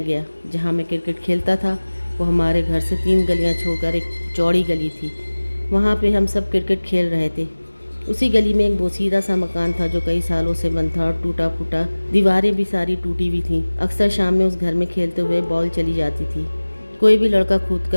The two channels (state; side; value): inverted; both; correlation -1.00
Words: گیا۔ جہاں میں کرکٹ کھیلتا تھا وہ ہمارے گھر سے 3 گلیاں چھوڑ کر ایک چوڑی گلی تھی، وہاں پہ ہم سب کرکٹ کھیل رہے تھے۔ اسی گلی میں ایک بوسیدہ سا مکان تھا جو کئی سالوں سے بند تھا اور ٹوٹا پھوٹا، دیواریں بھی ساری ٹوٹی ہوئی تھیں۔ اکثر شام میں اس گھر میں کھیلتے ہوئے بال چلی جاتی تھی، کوئی بھی لڑکا کھود